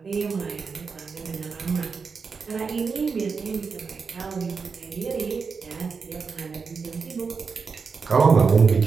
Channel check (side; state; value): left; quieter; 5.2 dB